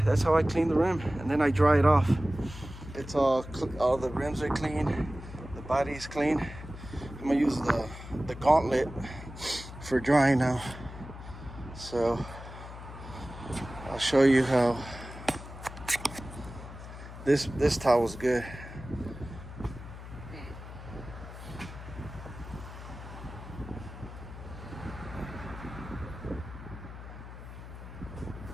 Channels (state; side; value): noise; left; hum, 13 dB below the sound